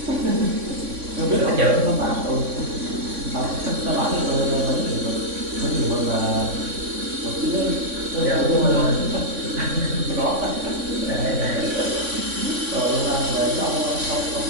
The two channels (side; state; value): left; late; 3.6 ms